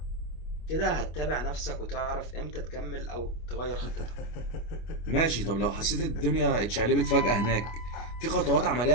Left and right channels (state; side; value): late; right; 25 ms